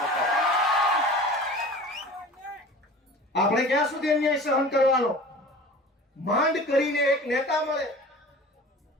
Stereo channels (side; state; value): both; normal; correlation 0.40